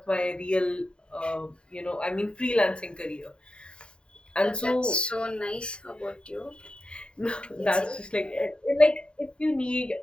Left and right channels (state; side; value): late; right; 0.051 ms